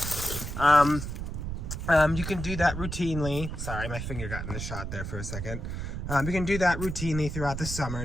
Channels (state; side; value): noise; right; rumble, 5 dB below the sound